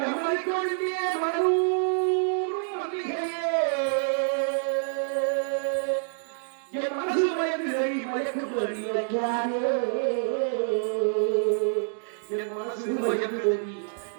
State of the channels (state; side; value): silent; left; digital silence